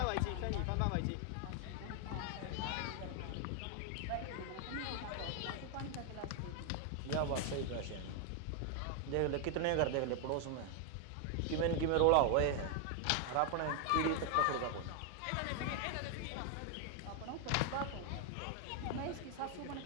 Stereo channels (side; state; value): both; different; correlation 0.01